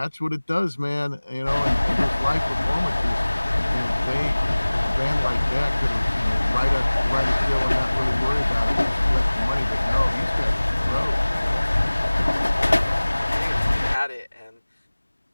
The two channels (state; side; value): inverted; both; correlation -1.00